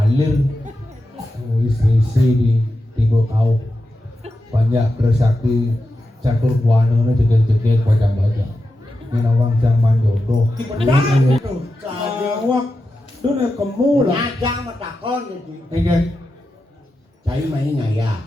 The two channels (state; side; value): normal; both; correlation 0.90